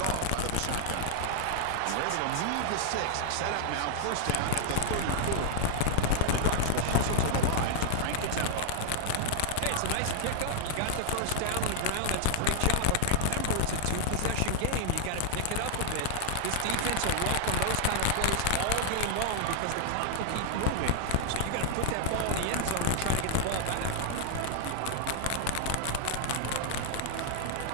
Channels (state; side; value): different; both; correlation 0.00